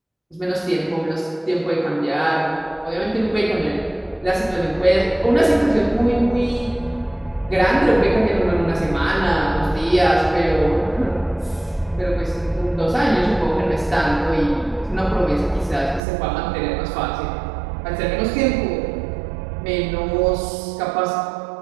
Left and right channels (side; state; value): left; drops out; at 16.0 s